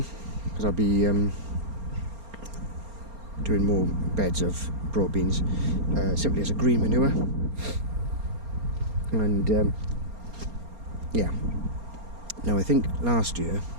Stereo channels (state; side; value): late; left; 4.3 ms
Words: because I'll be doing more beds of broad beans simply as a green manure. And yeah, now I think last year